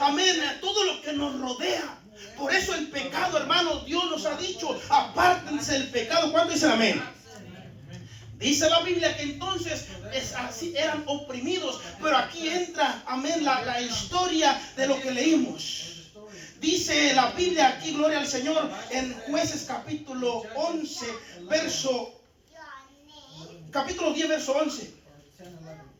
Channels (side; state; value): both; identical; correlation 1.00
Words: a todo lo que nos rodea. Por eso el pecado, hermano, Dios nos ha dicho, apártense del pecado. ¿Cuánto dicen amén? Dice la Biblia que entonces así eran oprimidos, pero aquí entra, amén, la historia de lo que leímos. Dice la Biblia aquí, gloria al Señor, en Jueces capítulo 11, capítulo 10, verso 11.